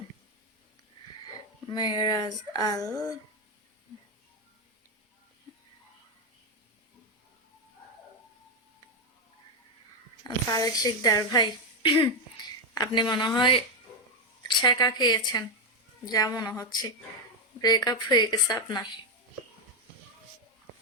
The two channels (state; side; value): normal; both; correlation 0.05